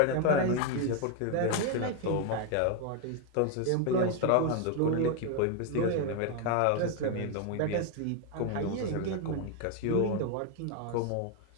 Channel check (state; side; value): different; both; correlation 0.01